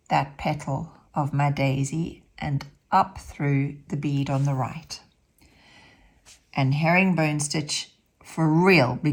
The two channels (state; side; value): identical; both; correlation 1.00